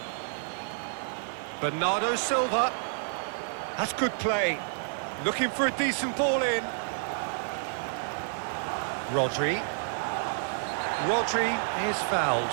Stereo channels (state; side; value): silent; left; 58 dB below the other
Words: Bernardo Silva. That's good play. Looking for a decent ball in. Rodri. Rodri is fouled.